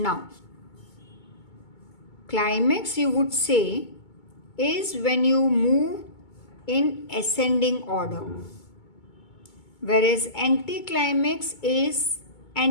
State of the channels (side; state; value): right; late; 2.2 ms